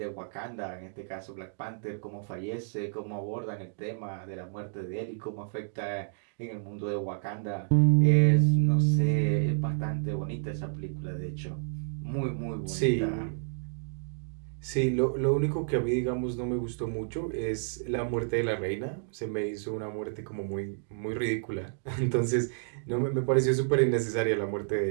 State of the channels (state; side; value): silent; left; digital silence